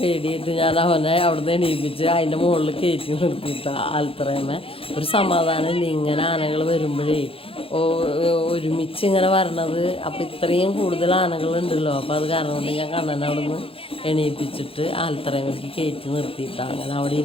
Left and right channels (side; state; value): right; late; 0.27 ms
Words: ഞാൻ അവനെ അവിടുന്ന് എണീപ്പിച്ച് അതിൻ്റെ മുകളിൽ കയറ്റി നിർത്തിയിട്ടാ ആൽത്തറയമ്മ. ഒരു സമാധാനമില്ല ഇങ്ങനെ ആനകൾ വരുമ്പോഴേ ഒരുമിച്ച് ഇങ്ങനെ വരണത്. അപ്പോൾ ഇത്രയും കൂടുതൽ ആനകളുണ്ടല്ലോ. അപ്പോൾ അത് കാരണം കൊണ്ട് ഞാൻ കണ്ണനെ അവിടെ നിന്ന് എണീപ്പിച്ചിട്ട് ആൽത്തറയമ്മയ്ക്ക് കയറ്റി നിർത്തിയിട്ടാണ് അങ്ങനെ അവിടെ